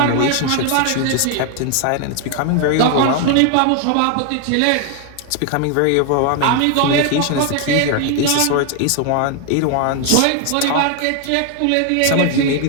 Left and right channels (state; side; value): different; both; correlation 0.00